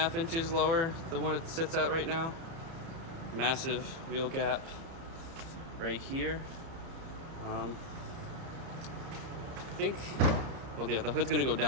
inches lower than what it sits at right now. Massive wheel gap right here. I think, well, yeah, the hood's gonna go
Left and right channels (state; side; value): late; left; 30 ms